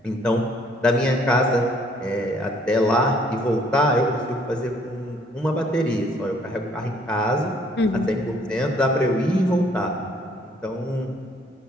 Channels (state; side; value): normal; both; correlation 0.62